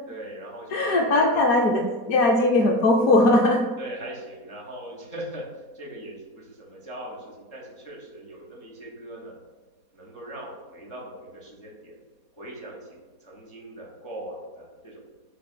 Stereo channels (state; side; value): late; right; 4.2 ms